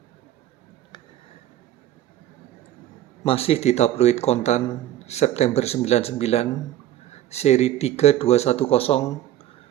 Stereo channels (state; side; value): quieter; left; 12.7 dB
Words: Masih di tabloid Kontan September 99, seri